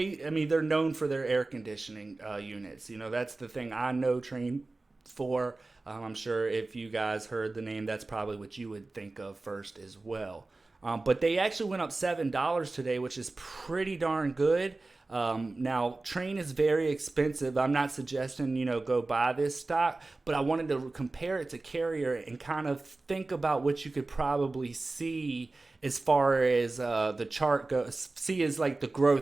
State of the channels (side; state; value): left; quieter; 3.3 dB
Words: mean, they're known for their air conditioning units. You know, that's the thing I know Train for. I'm sure if you guys heard the name, that's probably what you would think of first as well. But they actually went up $7 today, which is pretty darn good. Now, Train is very expensive. I'm not suggesting, go buy this stock, but I wanted to compare it to Carrier and kind of think about what you could probably see as far as the chart goes. See as like the